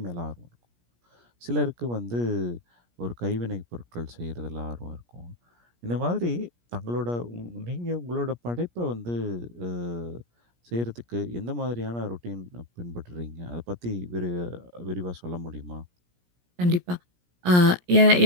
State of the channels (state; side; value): late; left; 17 ms